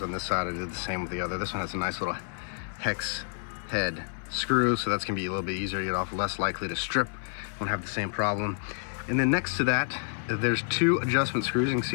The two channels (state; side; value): silent; right; 55 dB below the other